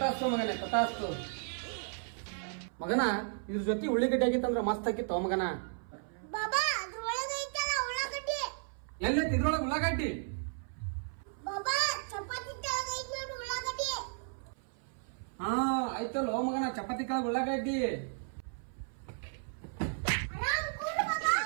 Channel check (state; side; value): silent; left; 55 dB below the other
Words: ಮಗನೇ, ತಥಾಸ್ತು. ಮಗನ ಇದ್ರ ಜೊತೆ ಉಳ್ಳಿಗಡ್ಡೆ ಆಗಿತ್ತಂದ್ರ ಮಸ್ತ್ ಆಗಿತ್ತು ಮಗನ. ಬಾಬಾ ಅದ್ರ ಒಳಗೆ ಐತಲ್ಲ ಉಳ್ಳಾಗಡ್ಡಿ. ಎಲ್ಲೈತಿ ಇದ್ರೊಳಗ ಉಳ್ಳಾಗಡ್ಡಿ? ಬಾಬಾ ಚಪಾತಿ ತಳಗ ಐತಿ ನೋಡು ಉಳ್ಳಾಗಡ್ಡಿ. ಹಾ ಆಯ್ತಲ್ಲ ಮಗನ, ಚಪಾತಿ ಕೆಳಗ ಉಳ್ಳಾಗಡ್ಡಿ. ಆರಾಮ್ ಕೂಡು ಬಾಬಾ.